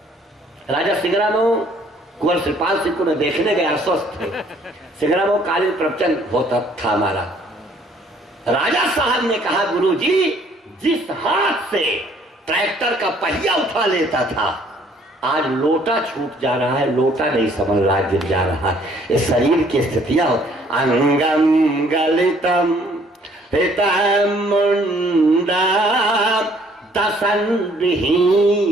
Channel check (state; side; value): normal; both; correlation 0.61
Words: राजा सिंगरामऊ कुंवर श्रीपाल सिंह को मैं देखने गया, अस्वस्थ थे। सिंगरामऊ कालीन प्रवचन होता था हमारा। राजा साहब ने कहा, गुरुजी जिस हाथ से ट्रैक्टर का पहिया उठा लेता था, आज लोटा छूट जा रहा है, लोटा नहीं समझ रहा, गिर जा रहा है। ये शरीर की स्थितियां। अंगम गलितम हितम मुंडा दसन